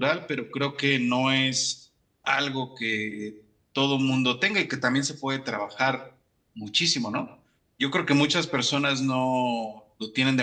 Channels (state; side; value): identical; both; correlation 1.00